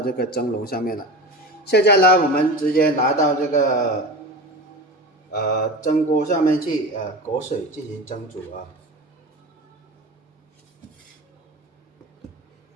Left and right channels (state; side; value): normal; both; correlation 0.30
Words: 這個蒸籠上面了。現在呢我們直接拿到這個蒸鍋上面去裹水進行蒸煮